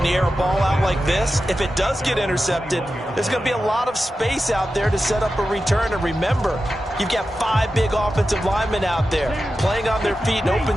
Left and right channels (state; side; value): normal; both; correlation 0.92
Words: you air a ball out like this, if it does get intercepted, there's going to be a lot of space out there to set up a return. And remember, you've got 5 big offensive linemen out there playing on their feet in